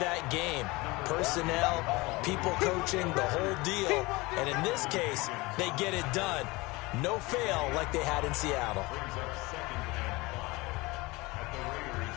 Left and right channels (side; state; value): right; quieter; 23.0 dB